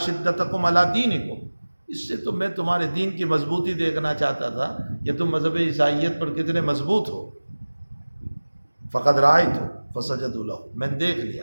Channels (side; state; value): both; inverted; correlation -1.00